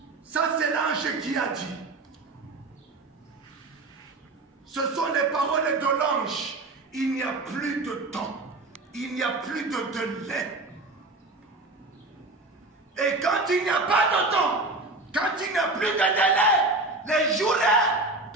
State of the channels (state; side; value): quieter; left; 3.1 dB